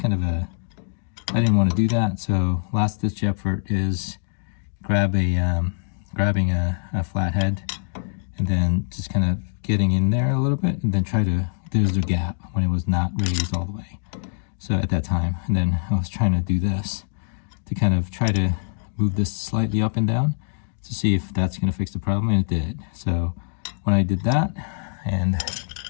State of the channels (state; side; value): silent; right; 63 dB below the other